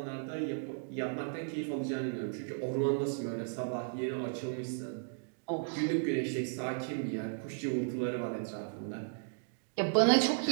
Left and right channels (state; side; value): silent; left; digital silence